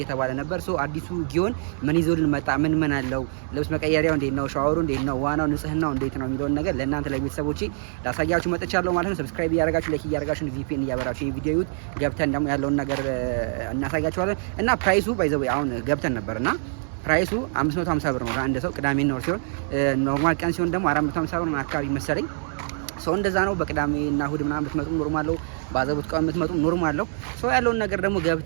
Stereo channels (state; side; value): silent; left; 62 dB below the other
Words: ነበር። ሶ አዲሱ ጊዮን ምን ይዞልን መጣ? ምን አለው? ልብስ መቀየሪያው እንዴት ነው? ሻወሩ እንዴት ነው? ዋናው ንጽህናው እንዴት ነው የሚለውን ነገር ለእናንተ ለቤተሰቦቼ ላሳያችሁ መጥቻለሁ ማለት ነው። ሰብስክራይብ እያደረጋችሁ ላይክ እያደረጋችሁ ቪፒኤን እያበራችሁ ይሄ ቪዲዮ ይዩት። ገብተን ደግሞ ያለውን ነገር እናሳያችኋለን እና ፕራይሱ ባይዘው አሁን ገብተን ነበርና ፕራይሱ 550 ብር ነው ለአንድ ሰው ቅዳሜና እሁድ ሲሆን ኖርማል ቀን ሲሆን ደግሞ 450 ብር ነው አካባቢ መሰለኝ። ሰው እንደዛ ነው። በቅዳሜና እሁድ ምናምን ብትመጡ ኖርማል ነው። ባዘቡት ቀን ብትመጡ ኖርማል ነው። ሰው ያለውን ነገር ደግሞ